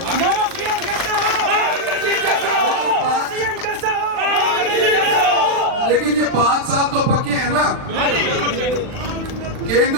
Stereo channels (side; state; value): left; late; 40 ms